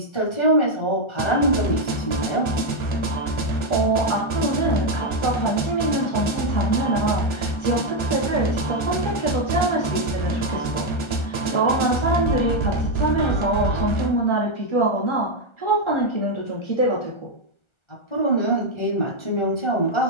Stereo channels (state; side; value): late; right; 1.3 ms